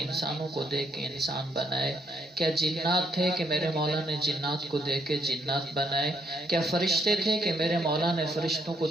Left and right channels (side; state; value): both; normal; correlation 0.73